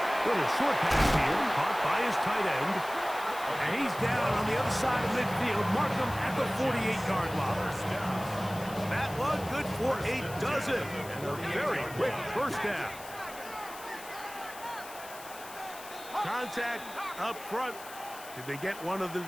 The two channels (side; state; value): left; noise; hiss, 16 dB below the sound